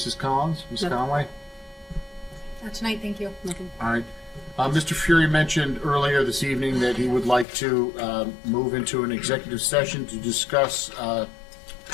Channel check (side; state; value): right; drops out; at 7.5 s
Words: Collins? Ms. No. Conway? Not tonight, thank you. Nothing. All right. Mr. Fury mentioned earlier this evening that he would like to move into an executive session to discuss